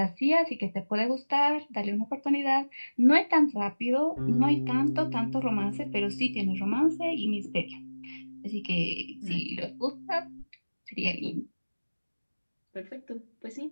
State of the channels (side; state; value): both; inverted; correlation -1.00